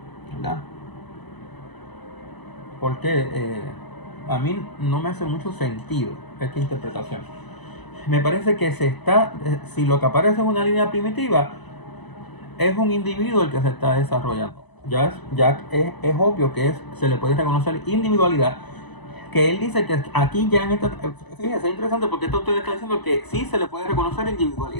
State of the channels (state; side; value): late; right; 1.0 ms